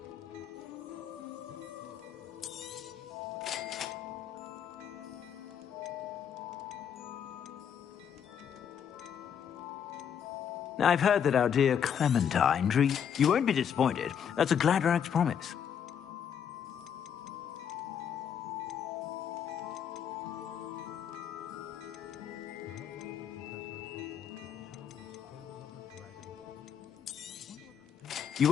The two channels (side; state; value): right; quieter; 8.2 dB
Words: Now, I've heard that our dear Clementine You won't be disappointed. That's a Gladrag's promise. You